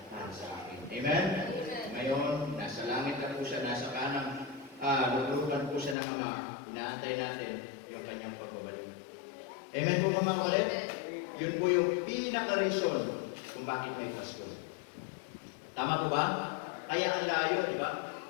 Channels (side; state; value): right; drops out; at 6.0 s